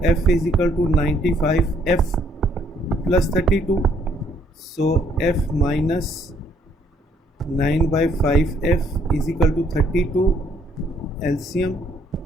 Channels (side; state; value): both; normal; correlation 0.66